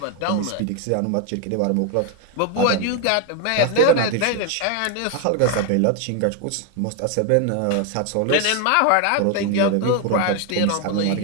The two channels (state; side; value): different; both; correlation 0.01